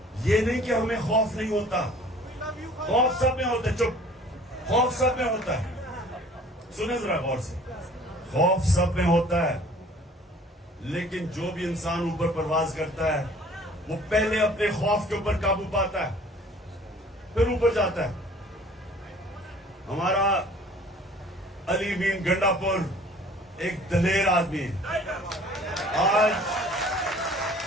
یہ نہیں کہ ہمیں خوف نہیں ہوتا، خوف سب میں ہوتا ہے. چپ، خوف سب میں ہوتا ہے. سنیں ذرا غور سے، خوف سب میں ہوتا ہے، لیکن جو بھی انسان اوپر پرواز کرتا ہے وہ پہلے اپنے خوف کے اوپر قابو پاتا ہے، پھر اوپر جاتا ہے. ہمارا علی مین گنڈا پور ایک دلیر آدمی ہے. آج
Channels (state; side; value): normal; both; correlation 0.51